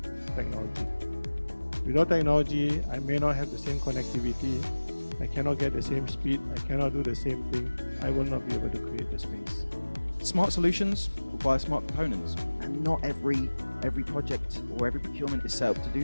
technology. Without technology, I may not have the same connectivity, I cannot get the same speed, I cannot do the same thing, I will not be able to create the space. Smart solutions require smart components, and not every project or every procurement is set up to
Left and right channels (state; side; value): inverted; both; correlation -1.00